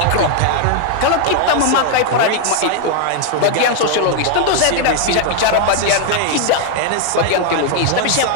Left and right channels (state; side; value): different; both; correlation 0.00